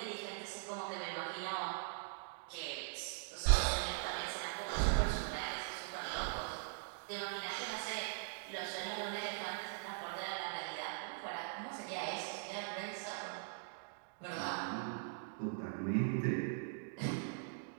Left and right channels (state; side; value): silent; left; digital silence